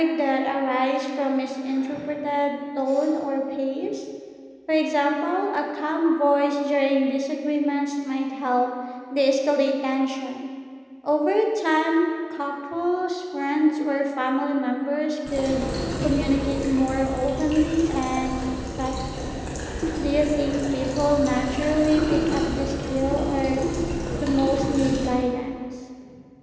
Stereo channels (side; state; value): both; identical; correlation 1.00